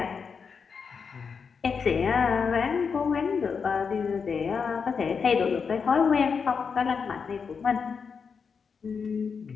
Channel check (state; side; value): quieter; right; 5.8 dB